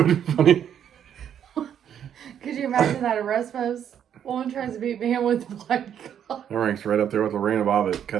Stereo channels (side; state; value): left; quieter; 9.2 dB